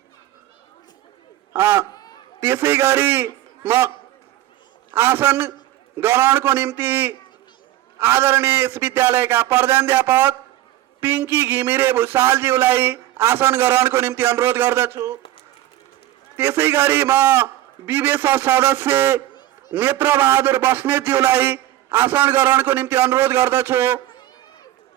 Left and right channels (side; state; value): left; quieter; 14.5 dB